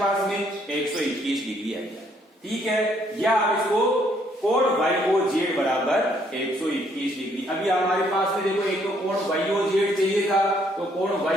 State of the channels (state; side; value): normal; both; correlation 0.68